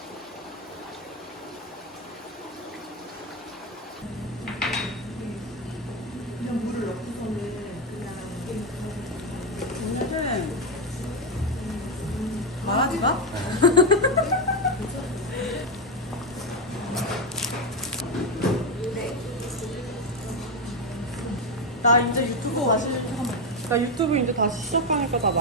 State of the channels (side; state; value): both; normal; correlation 0.09